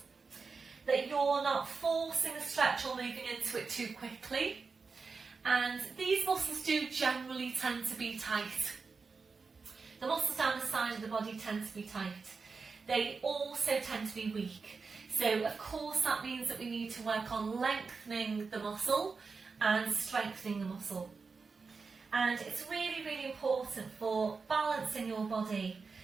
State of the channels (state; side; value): quieter; left; 4.7 dB